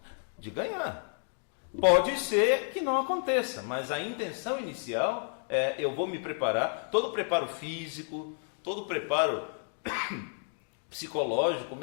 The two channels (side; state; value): right; silent; 57 dB below the other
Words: de ganhar. Pode ser que não aconteça, mas a intenção inicial é: eu vou me preparar, todo o preparo físico, todo o preparo psicológico,